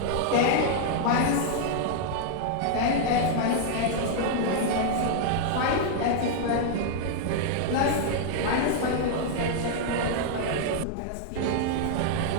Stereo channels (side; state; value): both; different; correlation -0.01